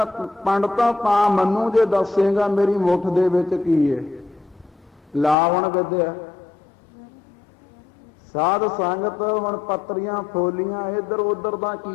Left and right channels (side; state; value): right; drops out; at 5.4 s